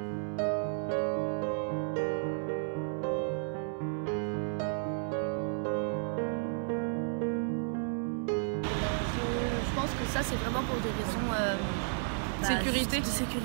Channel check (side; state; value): left; silent; 56 dB below the other